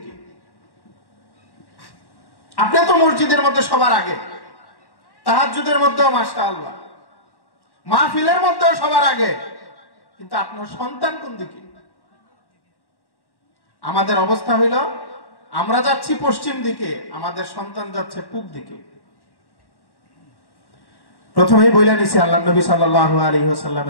আপনি তো মসজিদের মধ্যে সবার আগে, তাহাজ্জুদের মধ্যেও মাশাআল্লাহ, মাহফিলের মধ্যেও সবার আগে, কিন্তু আপনার সন্তান কোন দিকে? আমাদের অবস্থা হইল আমরা যাচ্ছি পশ্চিম দিকে, আমাদের সন্তান যাচ্ছে পূব দিকে। প্রথমেই বইলা নিছি আল্লাহ নবী সাল্লাল্লাহু আলাইহি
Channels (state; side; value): late; right; 1.1 ms